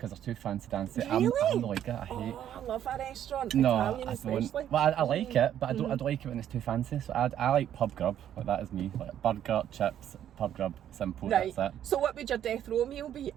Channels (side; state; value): left; quieter; 10.5 dB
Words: they're too fancy dancy. Really? I'm not like it. I hate. Oh, I love a restaurant. No, Italian I especially. don't. Well, I like it, but I don't like it when it's too fancy. So I like pub grub. Like that is me. Like burger, chips, pub grub, simple. Right. That's it. So what would your death row meal be?